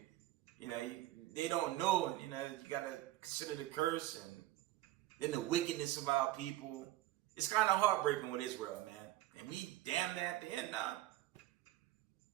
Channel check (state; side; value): quieter; left; 15.8 dB